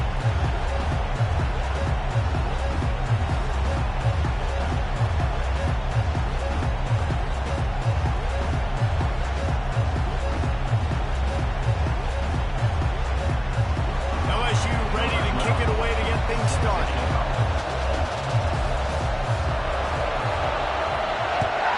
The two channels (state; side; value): identical; both; correlation 1.00